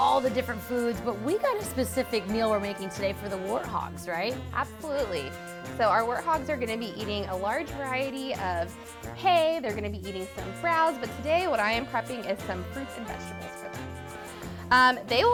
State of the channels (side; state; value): both; identical; correlation 1.00